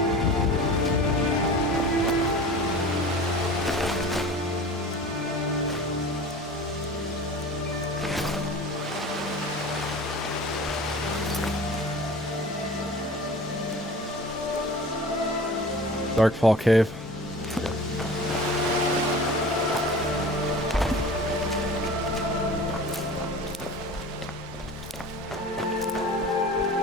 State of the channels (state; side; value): normal; both; correlation 0.39